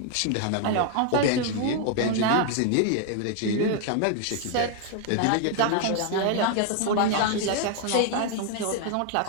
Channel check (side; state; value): both; different; correlation 0.00